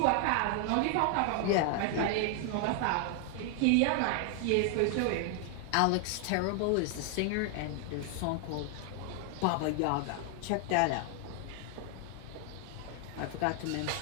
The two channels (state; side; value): different; both; correlation 0.00